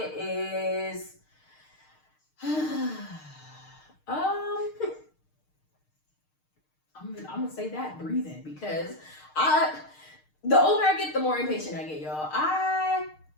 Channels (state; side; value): late; right; 6.5 ms